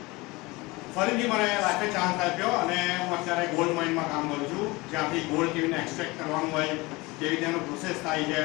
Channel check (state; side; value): quieter; right; 23.1 dB